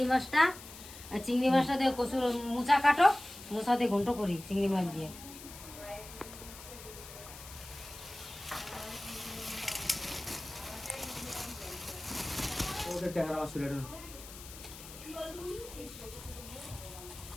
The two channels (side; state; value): left; noise; hiss, 15 dB below the sound